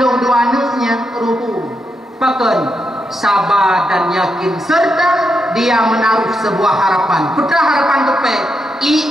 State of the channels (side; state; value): both; normal; correlation 0.83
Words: dua anaknya ruhu paken sabar dan yakin serta dia menaruh sebuah harapan putra harapan tupai